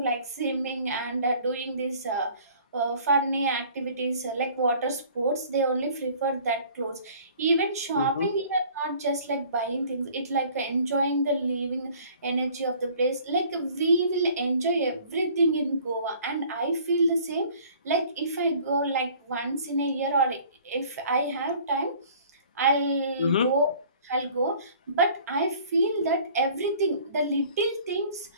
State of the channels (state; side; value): inverted; both; correlation -0.52